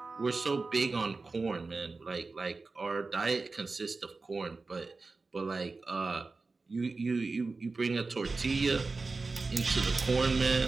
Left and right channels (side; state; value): left; quieter; 3.9 dB